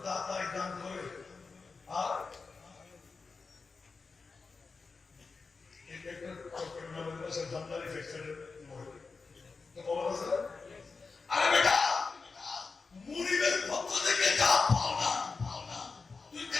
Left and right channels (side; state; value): right; quieter; 4.4 dB